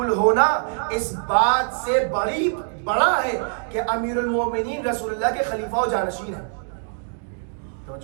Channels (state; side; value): silent; left; digital silence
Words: ہونا اس بات سے بڑا ہے کہ امیر المؤمنین رسول اللہ کے خلیفہ و جانشین ہیں.